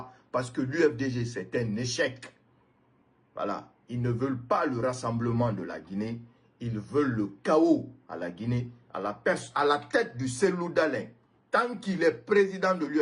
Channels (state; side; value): identical; both; correlation 1.00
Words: Parce que l'UFDG, c'est un échec. Voilà. Ils ne veulent pas le rassemblement de la Guinée. Ils veulent le chaos à la Guinée, à la tête du Cellou Dalein. Tant qu'il est président de